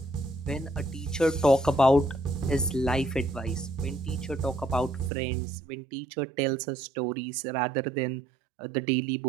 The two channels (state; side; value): drops out; left; at 5.1 s